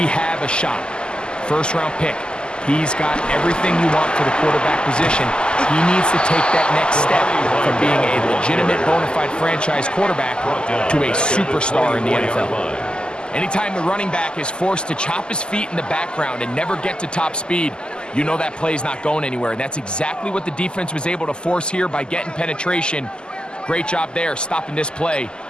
have a shot. First-round pick. He's got everything you want for the quarterback position. He needs to take that next step from being a legitimate bona fide franchise quarterback to a superstar in the NFL. Anytime the running back is forced to chop his feet in the background and never get to top speed, you know that play's not going anywhere. And that's exactly what the defense was able to force here by getting penetration. Great job there, stopping this play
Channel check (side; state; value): right; late; 0.048 ms